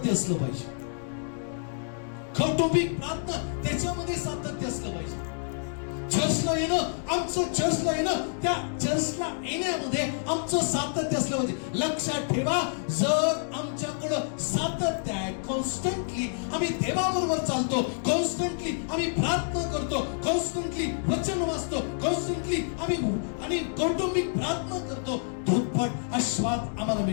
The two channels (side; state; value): right; silent; digital silence